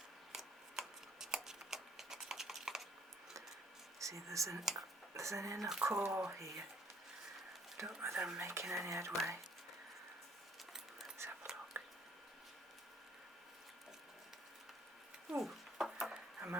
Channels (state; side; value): normal; both; correlation 0.61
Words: See, there's an inner core here. I don't know whether I'm making any headway. Let's have a look. Ooh, I